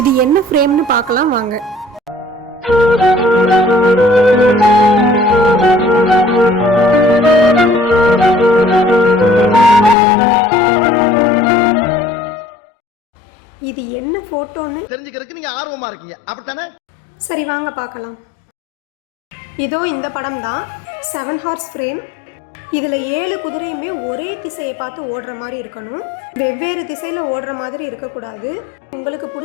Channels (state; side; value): drops out; right; at 10.0 s